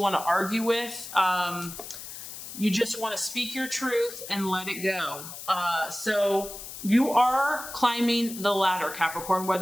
to argue with. You just want to speak your truth and let it go. So you are climbing the ladder, Capricorn,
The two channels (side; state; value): left; noise; hiss, 11 dB below the sound